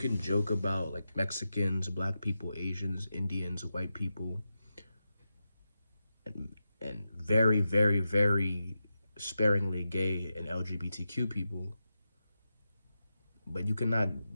joke about like Mexicans, black people, Asians, Indians, white people, and very, very, very sparingly gay and LGBTQ people. But you cannot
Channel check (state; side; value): inverted; both; correlation -0.90